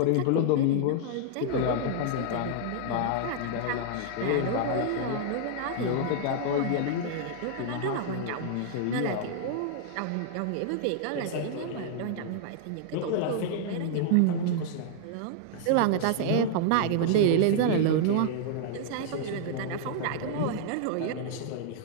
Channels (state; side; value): different; both; correlation -0.01